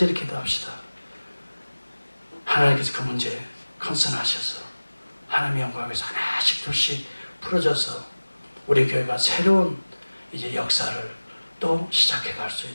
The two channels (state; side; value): inverted; both; correlation -1.00